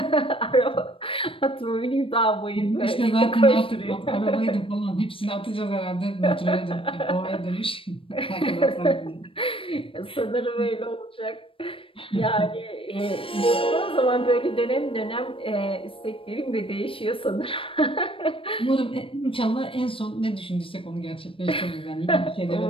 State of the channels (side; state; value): right; late; 0.26 ms